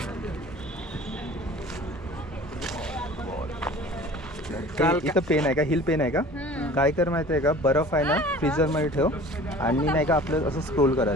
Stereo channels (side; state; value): both; normal; correlation 0.44